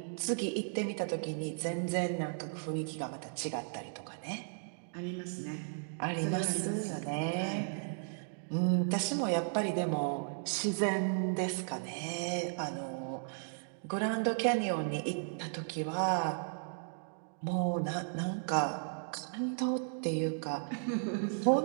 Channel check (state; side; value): silent; left; digital silence